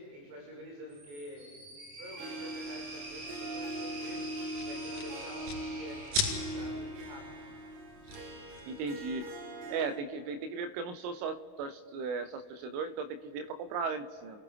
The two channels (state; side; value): late; left; 28 ms